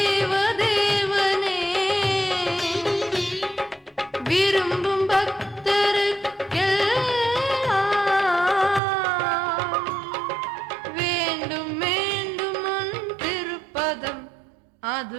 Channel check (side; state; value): left; drops out; at 8.8 s